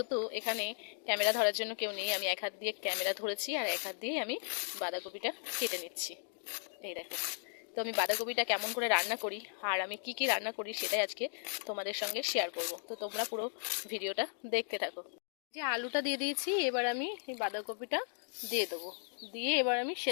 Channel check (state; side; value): silent; right; 54 dB below the other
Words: এখানে ক্যামেরা ধরার জন্য কেউ নেই, আমি এক হাত দিয়ে ক্যামেরা ধরেছি আর এক হাত দিয়ে আমি বাঁধাকপিটা কেটে নিচ্ছি। এই দেখো, তো আমি বাঁধাকপিটা কেমন করে রান্না করি আর আমি কি কি রান্না করি সেটাই আজকে তোমাদের সঙ্গে শেয়ার করব। তো তোমরা পুরো ভিডিওটা দেখতে থাকো। যে আলুটা দিয়ে দিয়েছি, এবার আমি এই বাঁধাকপিটা দিয়ে দেবো, দিয়ে এবার আমি